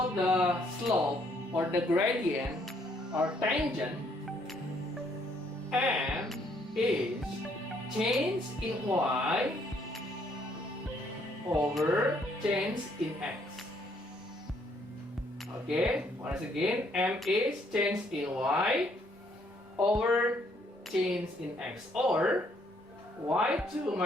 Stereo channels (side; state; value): both; normal; correlation 0.68